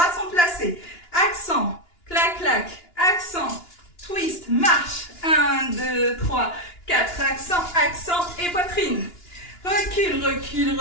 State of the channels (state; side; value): late; right; 2.9 ms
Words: sont placés. Accent, clac, clac. Accent, twist, marche. 1, 2, 3, 4. Accent, accent et poitrine. Recule, recule,